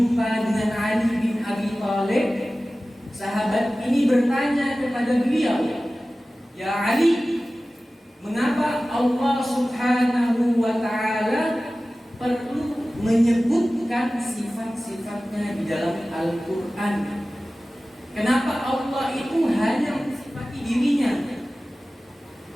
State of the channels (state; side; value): normal; both; correlation 0.96